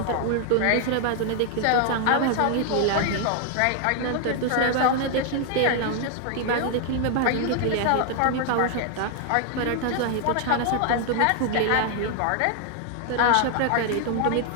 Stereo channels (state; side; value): different; both; correlation 0.00